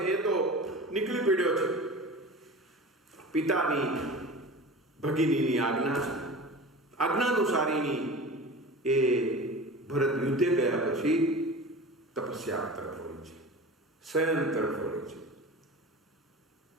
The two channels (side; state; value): both; normal; correlation 0.35